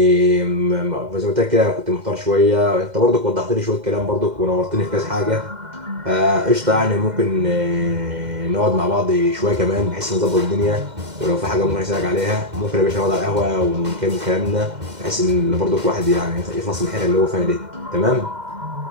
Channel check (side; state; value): left; late; 2.1 ms